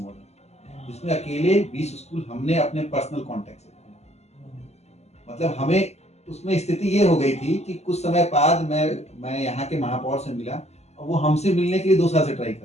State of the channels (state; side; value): late; right; 0.32 ms